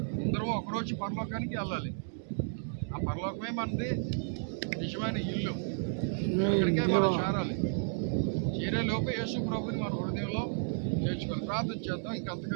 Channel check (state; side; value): silent; left; digital silence